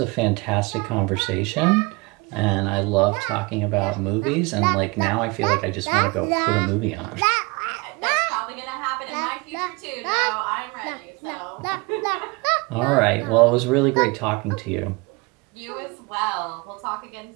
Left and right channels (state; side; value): quieter; left; 26.7 dB